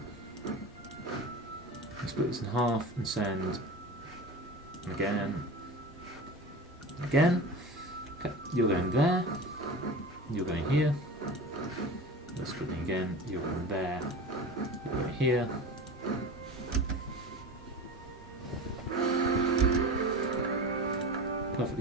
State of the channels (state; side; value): normal; both; correlation 0.31